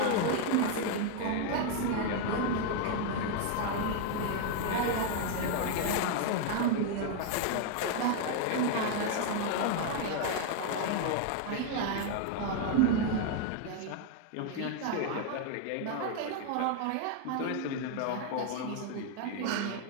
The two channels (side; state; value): both; different; correlation 0.00